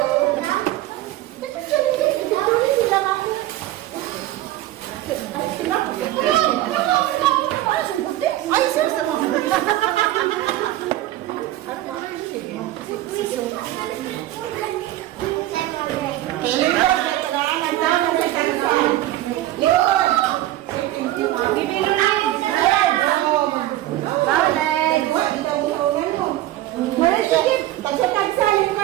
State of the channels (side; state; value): left; quieter; 15.1 dB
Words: Ay, seryoso mo.